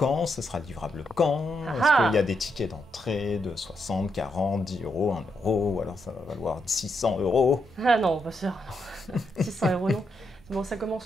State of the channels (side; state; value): both; normal; correlation 0.80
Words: Ça sera livrable quand? Ah Est-ce ah. qu'il y a des tickets d'entrée de 60, 40, 10 euros, 1 euro? Ou alors ça va valoir 600 euros? Ah non, pas sûr. 600 € non. Bon, ça